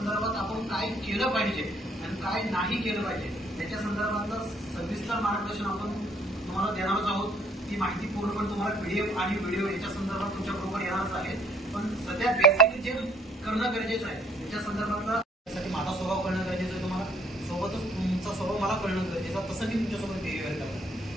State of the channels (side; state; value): both; normal; correlation 0.62